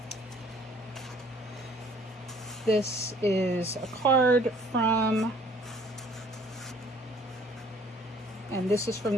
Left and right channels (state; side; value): normal; both; correlation 0.57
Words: This is a card from, and this is from